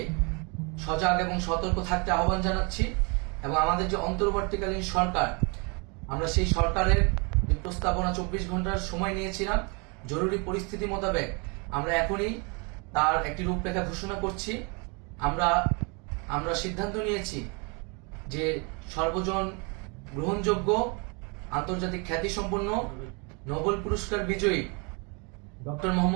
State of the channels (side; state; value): left; quieter; 32.3 dB